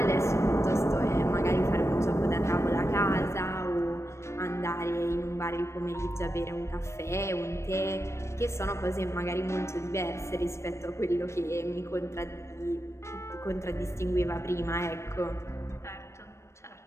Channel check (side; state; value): right; late; 0.13 ms